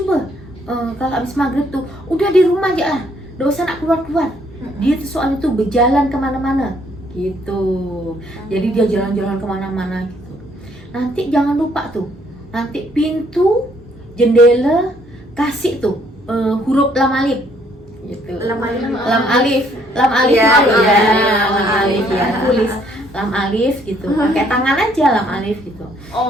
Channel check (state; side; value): normal; both; correlation 0.66